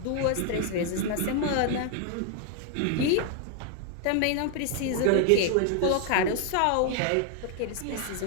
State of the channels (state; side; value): different; both; correlation 0.00